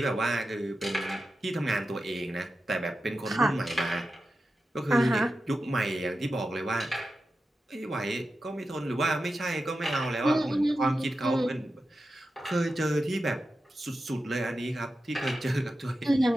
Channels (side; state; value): both; normal; correlation 0.91